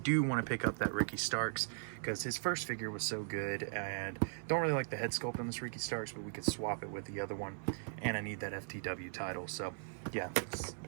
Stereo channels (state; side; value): silent; left; 52 dB below the other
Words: do want to pick up that Ricky Starks, because his first figure was so good, and don't really like the head sculpt on this Ricky Starks, but we could swap it with the other one, and I need that FTW title, so yeah,